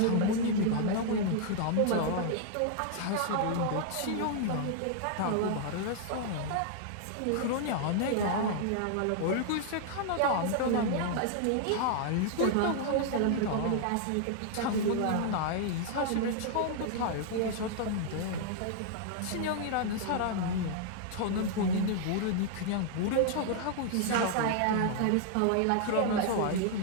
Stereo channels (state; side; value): different; both; correlation -0.01